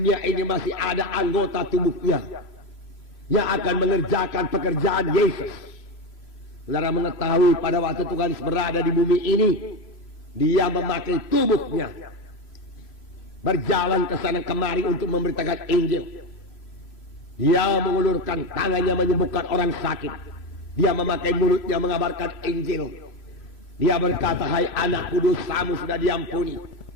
ini masih ada anggota tubuhnya yang akan mengerjakan pekerjaan Yesus. Saudara mengetahui pada waktu Tuhan Yesus berada di bumi ini, dia memakai tubuhnya, berjalan ke sana kemari untuk memberitakan Injil. Dia mengulurkan tangannya menyembuhkan orang sakit. Dia memakai mulutnya mengabarkan Injil. Dia berkata, hai anakku, dosamu sudah diampuni.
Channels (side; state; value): right; late; 3.0 ms